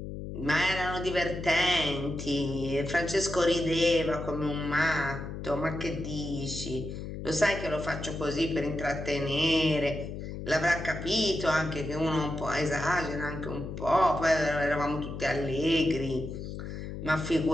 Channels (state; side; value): noise; left; hum, 8 dB below the sound